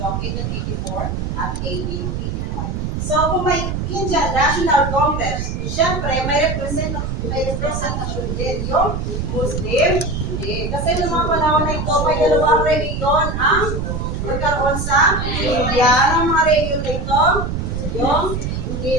noong 1884 at 1885. So, kung may Indian National Congress, syempre may representasyon din yung Muslim. Hindi. Kasi noong mga panahon na ito, may dalawang reliyon ang magkaroon sa India. Anong mga reliyon na ito? Yung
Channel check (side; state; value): right; noise; rumble, 3 dB below the sound